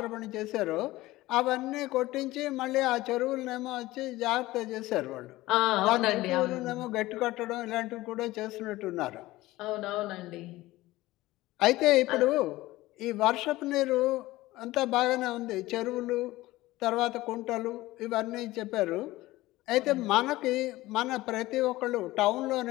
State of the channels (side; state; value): right; quieter; 18.1 dB